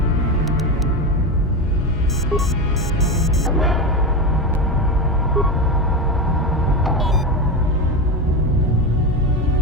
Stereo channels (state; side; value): normal; both; correlation 0.17